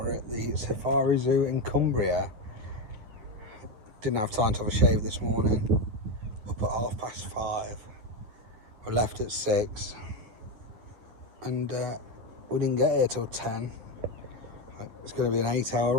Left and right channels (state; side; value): late; left; 9.5 ms